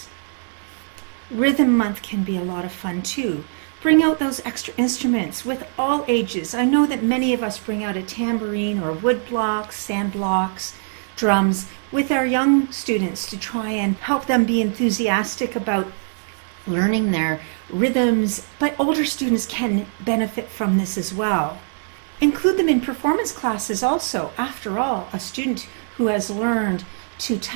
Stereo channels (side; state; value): left; silent; digital silence